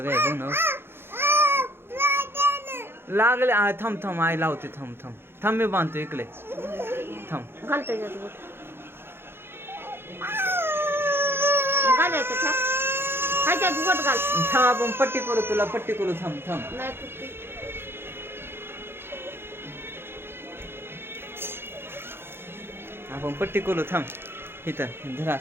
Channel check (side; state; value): left; late; 0.11 ms